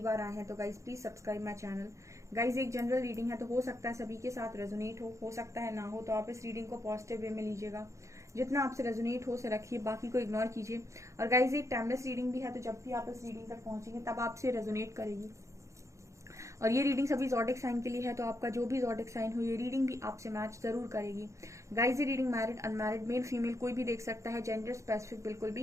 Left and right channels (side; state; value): left; late; 0.15 ms